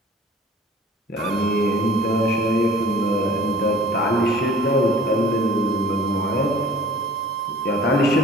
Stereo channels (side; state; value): both; normal; correlation 0.48